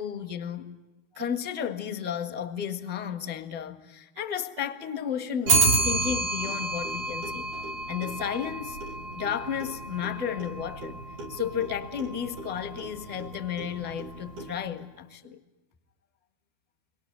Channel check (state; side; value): late; left; 12 ms